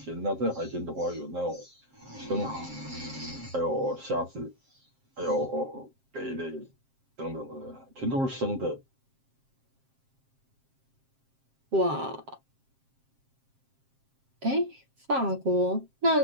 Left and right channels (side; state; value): left; late; 7.5 ms